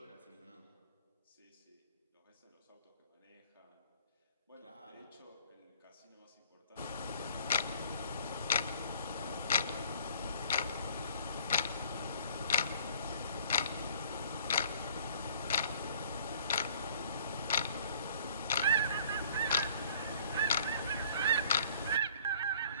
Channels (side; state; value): both; inverted; correlation -0.54